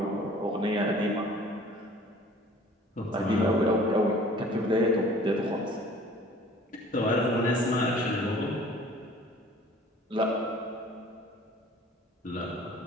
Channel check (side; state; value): both; normal; correlation 0.50